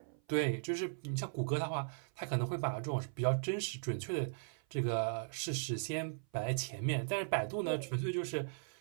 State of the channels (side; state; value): left; silent; 53 dB below the other